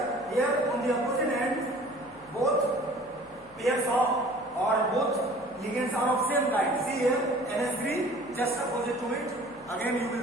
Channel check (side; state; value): left; noise; hum, 27 dB below the sound